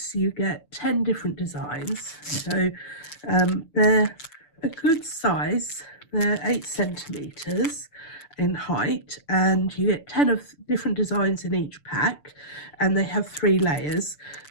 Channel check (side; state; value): right; late; 6.8 ms